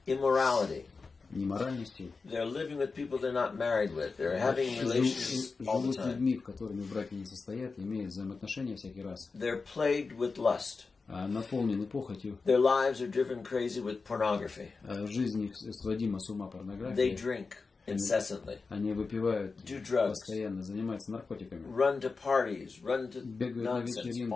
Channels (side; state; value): right; quieter; 4.4 dB